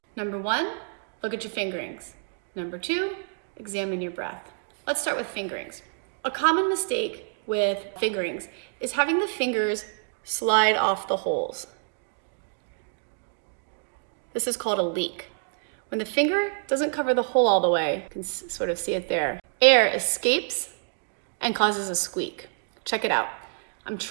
Number one, look at your fingerings. Number two, examine your breath. Let's start with fingerings. A common mistake with fingerings is having the fingers slide off the holes. This is called a leak. When the finger doesn't cover the hole all the way, you can sort of see it there, air escapes and causes a squeak. Check it out. I'm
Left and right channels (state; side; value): silent; left; 60 dB below the other